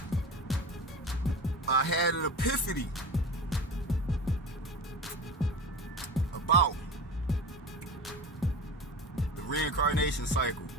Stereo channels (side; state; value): both; normal; correlation 0.30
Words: I had an epiphany about the reincarnation cycle,